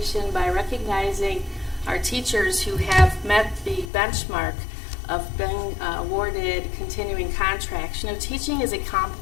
by recognizing our teachers who have met the benchmark of being awarded continuing contracts. You know, teaching is a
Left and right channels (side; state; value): right; drops out; at 3.9 s